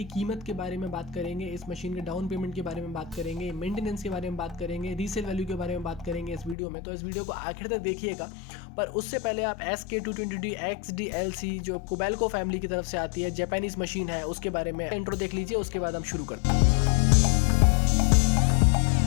कीमत के बारे में बात करेंगे, इस मशीन के डाउन पेमेंट के बारे में बात करेंगे, मेंटेनेंस के बारे में बात करेंगे, रीसेल वैल्यू के बारे में बात करेंगे इस वीडियो में। तो इस वीडियो को आखिर तक देखिएगा। पर उससे पहले आप SK220D XDLC जो कोबेल्को फैमिली की तरफ से आती है, जापानीज मशीन है, उसके बारे में इंट्रो देख लीजिए, उसके बाद हम शुरू करते हैं।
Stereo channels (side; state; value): right; drops out; at 6.6 s